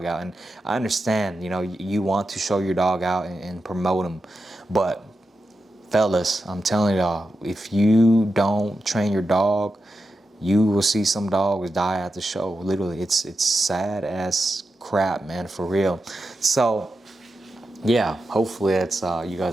out. And I understand, you know, you want to show your dog out and promote him, but fellas, I'm telling y'all, if you don't train your dog, you will see some dogs die at the show. Literally, it's sad as crap, man, for real. So yeah, hopefully that's you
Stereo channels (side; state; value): both; normal; correlation 0.89